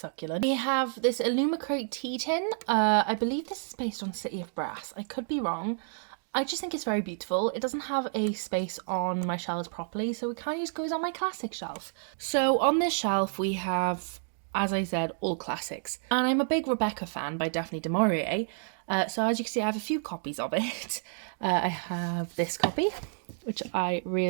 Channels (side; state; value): left; silent; digital silence